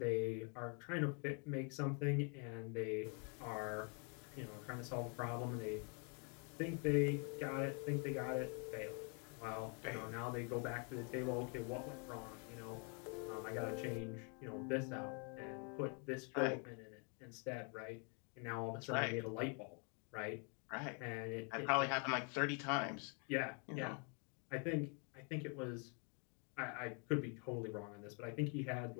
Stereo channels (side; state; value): right; quieter; 36.7 dB